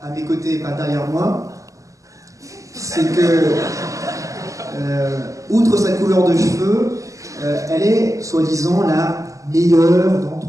à mes côtés et pas derrière moi, c'est que, outre sa couleur de cheveux, elle est, soi-disant, la meilleure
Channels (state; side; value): late; left; 0.16 ms